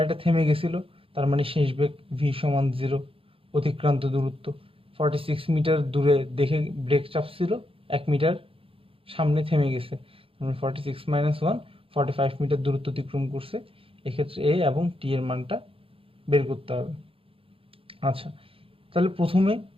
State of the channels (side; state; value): left; late; 0.27 ms